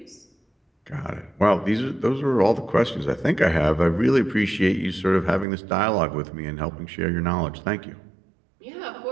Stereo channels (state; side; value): drops out; left; at 5.5 s